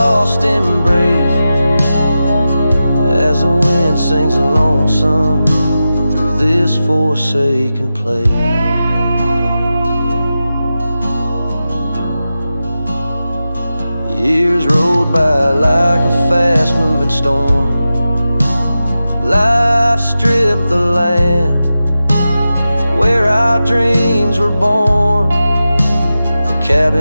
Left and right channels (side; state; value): both; inverted; correlation -0.92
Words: embrace, as the wind sings a lonesome through this forsaken place. Years rolled by like a fast-moving storm. Life stripped the land where our dreams were born. The